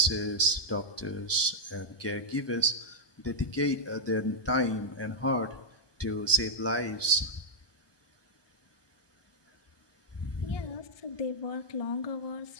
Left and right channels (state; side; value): late; right; 1.2 ms